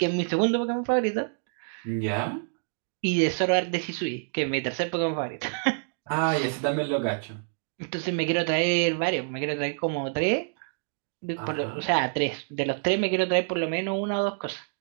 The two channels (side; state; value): left; silent; digital silence